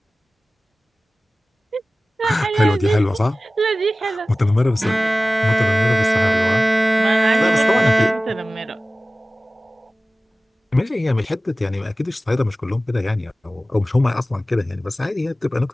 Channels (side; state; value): both; normal; correlation 0.97